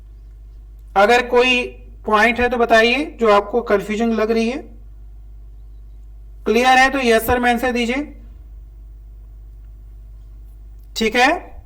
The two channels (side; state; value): both; identical; correlation 1.00